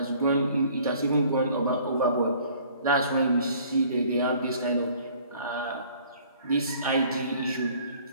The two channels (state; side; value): inverted; both; correlation -0.55